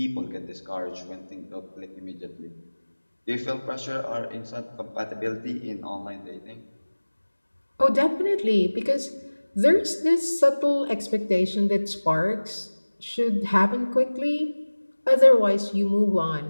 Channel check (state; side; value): inverted; both; correlation -1.00